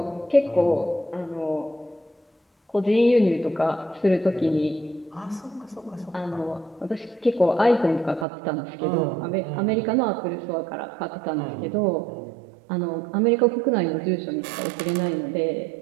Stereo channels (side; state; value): left; drops out; at 8.2 s